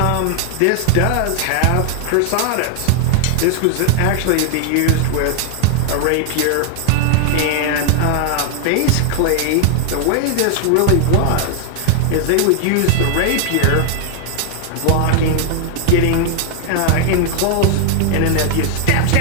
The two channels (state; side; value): different; both; correlation 0.00